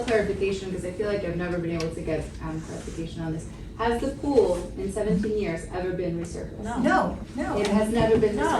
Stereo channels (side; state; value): both; identical; correlation 1.00